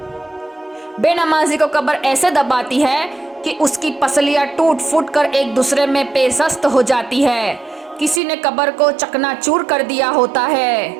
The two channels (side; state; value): left; drops out; at 8.2 s